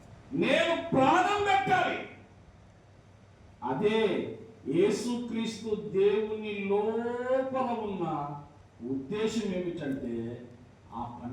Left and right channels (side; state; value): both; identical; correlation 1.00